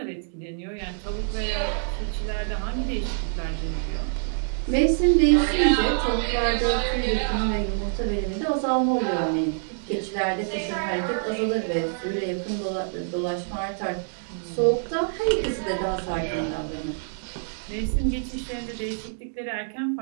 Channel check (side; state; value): left; silent; digital silence